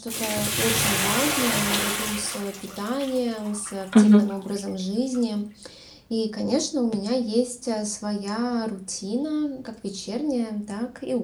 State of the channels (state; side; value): identical; both; correlation 1.00